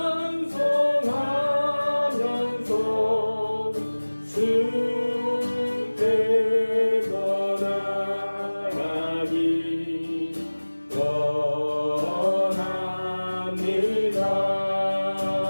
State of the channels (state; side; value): inverted; both; correlation -1.00